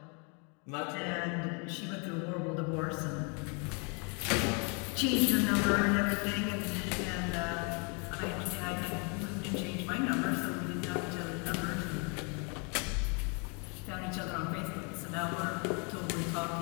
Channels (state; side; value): quieter; right; 35.0 dB